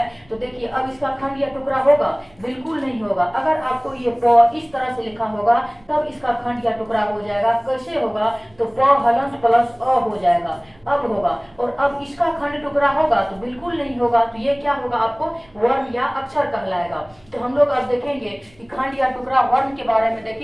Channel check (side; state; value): right; noise; rumble, 30 dB below the sound